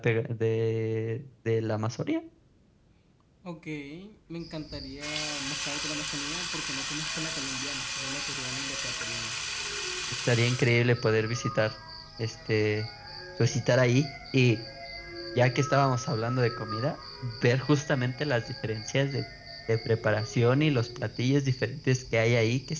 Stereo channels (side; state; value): both; identical; correlation 1.00